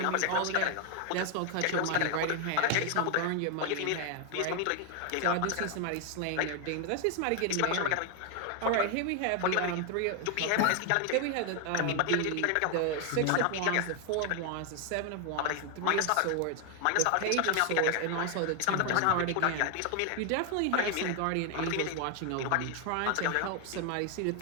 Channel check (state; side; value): different; both; correlation 0.00